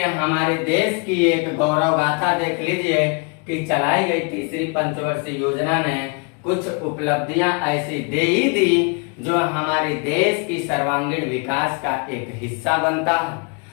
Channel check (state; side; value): quieter; right; 33.7 dB